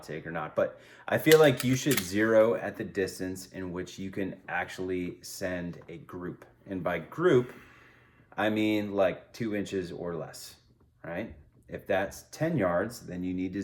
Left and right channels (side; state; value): both; identical; correlation 1.00